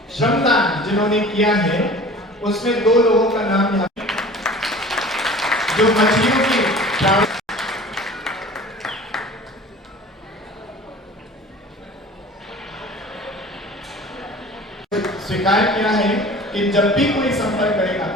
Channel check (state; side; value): normal; both; correlation 0.43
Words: श्रमदान जिन्होंने किया है उसमें 2 लोगों का नाम यहाँ जो मछलियों की स्वीकार किया है कि जब भी कोई संपर्क करेगा,